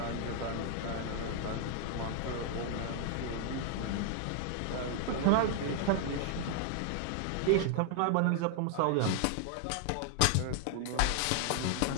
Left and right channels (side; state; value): both; different; correlation 0.00